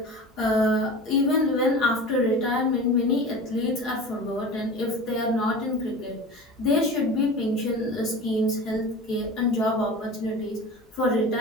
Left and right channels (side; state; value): both; normal; correlation 0.34